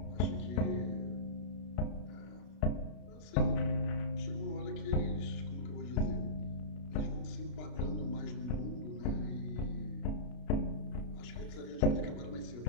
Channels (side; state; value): right; late; 33 ms